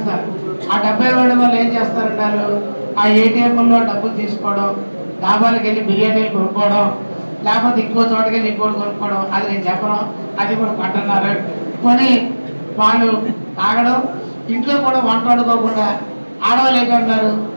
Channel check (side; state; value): both; inverted; correlation -1.00